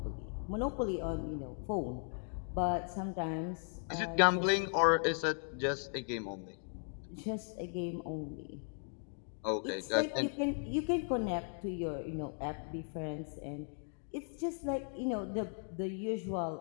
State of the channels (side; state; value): right; silent; 53 dB below the other